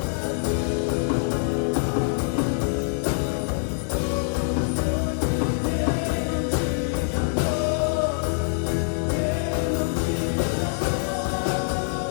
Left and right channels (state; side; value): silent; right; digital silence